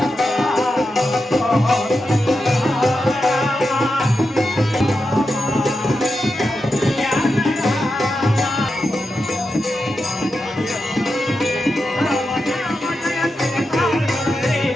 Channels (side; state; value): both; normal; correlation 0.88